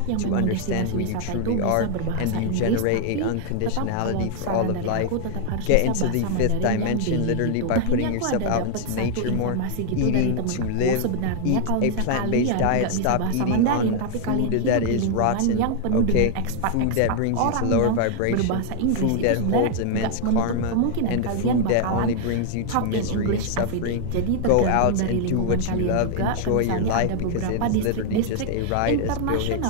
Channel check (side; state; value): both; different; correlation 0.00